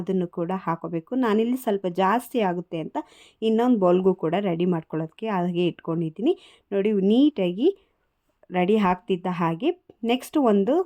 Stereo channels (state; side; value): identical; both; correlation 1.00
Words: ಕೂಡ ಹಾಕೋಬೇಕು. ನಾನಿಲ್ಲಿ ಸ್ವಲ್ಪ ಜಾಸ್ತಿ ಆಗುತ್ತೆ ಅಂತ ಇನ್ನೊಂದು ಬೌಲ್ಗೂ ಕೂಡ ರೆಡಿ ಮಾಡ್ಕೊಳ್ಳೋದಕ್ಕೆ ಹಾಗೆ ಇಟ್ಕೊಂಡಿದ್ದೀನಿ. ನೋಡಿ ನೀಟಾಗಿ ರೆಡಿ ಆಗ್ತಿದ್ದ ಹಾಗೆ ನೆಕ್ಸ್ಟ್ ಒಂದು